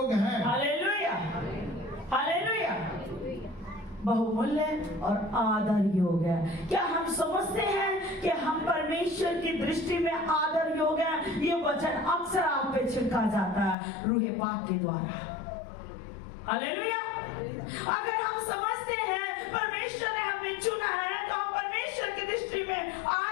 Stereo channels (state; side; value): drops out; right; at 13.8 s